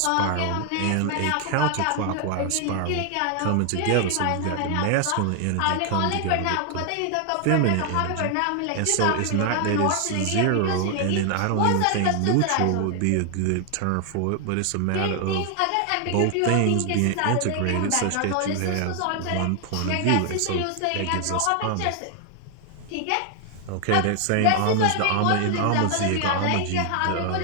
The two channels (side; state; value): both; different; correlation 0.00